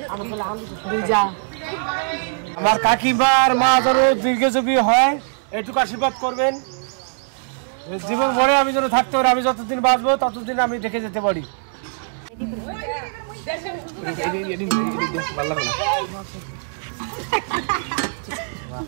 আমার কাকিমার মা যেন দীর্ঘজীবী হয়, এইটুকু আশীর্বাদ করবেন। জীবন ভরে আমি যেন থাকতে পারি, আমি যতদিন বাঁচবো ততদিন আমি দেখে যেতে পারি।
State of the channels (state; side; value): silent; left; digital silence